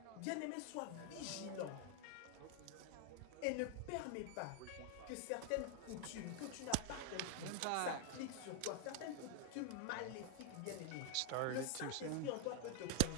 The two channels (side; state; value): both; different; correlation 0.00